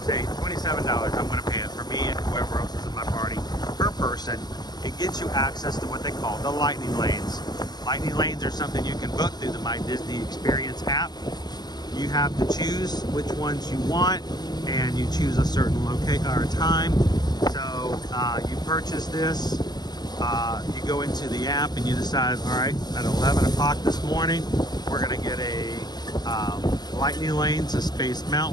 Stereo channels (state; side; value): late; right; 0.20 ms